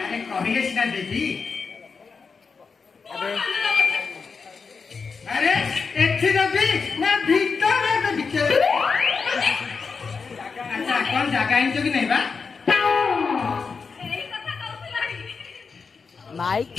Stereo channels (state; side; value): quieter; right; 5.1 dB